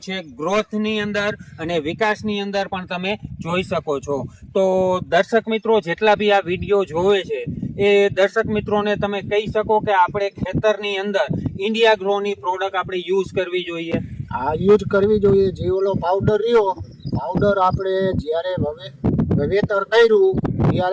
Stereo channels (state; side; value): identical; both; correlation 1.00